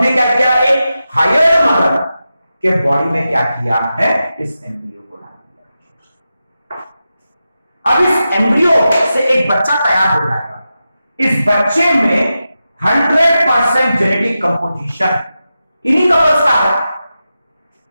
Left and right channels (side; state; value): both; inverted; correlation -0.91